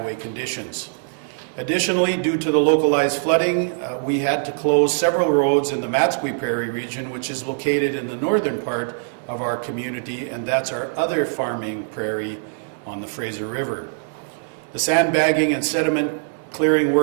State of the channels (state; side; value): silent; left; 55 dB below the other